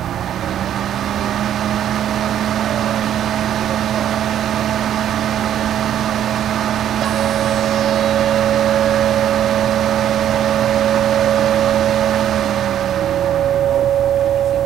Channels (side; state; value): left; quieter; 10.5 dB